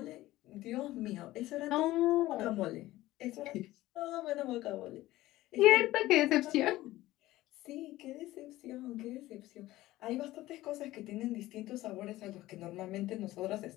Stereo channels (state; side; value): quieter; right; 16.6 dB